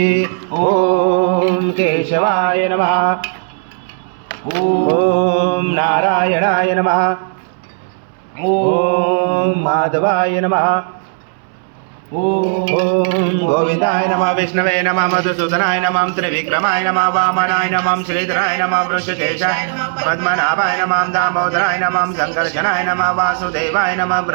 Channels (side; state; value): left; silent; 66 dB below the other